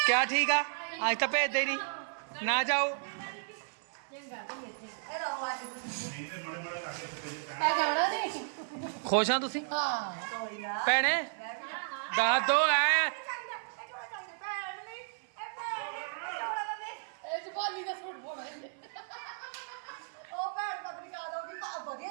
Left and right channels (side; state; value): left; silent; 55 dB below the other